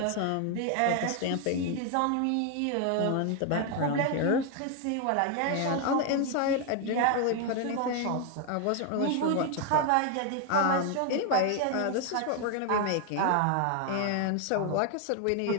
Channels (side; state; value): both; different; correlation 0.01